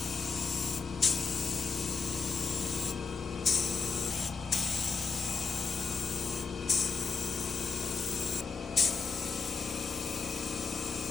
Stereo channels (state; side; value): quieter; right; 5.2 dB